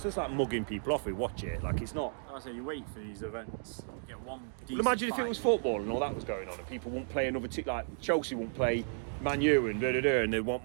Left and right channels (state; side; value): silent; left; digital silence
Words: just like mugging people off. We watch it. Like it's not. I say you wait for these events. Get one. Well, imagine if it was football and all that was going on, and people won't play another team. Like Chelsea won't play Man U and and they want